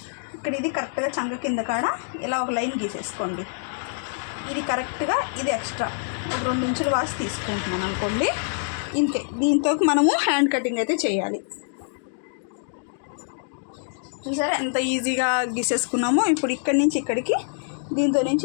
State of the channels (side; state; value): right; silent; digital silence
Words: ఇక్కడ ఇది కరెక్ట్గా చంక కింద కాడ ఇలా ఒక లైన్ గీసేసుకోండి. ఇది కరెక్ట్గా, ఇది ఎక్స్ట్రా ఒక 2 ఇంచులు వాసి తీసుకుంటున్నాను అనుకోండి. ఇంతే, దీంతో మనము హ్యాండ్ కటింగ్ అయితే చేయాలి. చూసారా ఎంత ఈజీగా గీసేసుకున్నామో. ఇప్పుడు ఇక్కడి నుంచి ఇక్కడికి, దీంతో